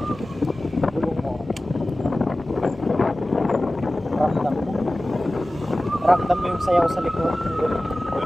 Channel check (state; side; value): normal; both; correlation 0.96